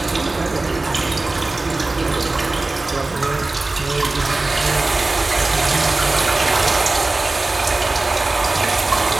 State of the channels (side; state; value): left; quieter; 3.2 dB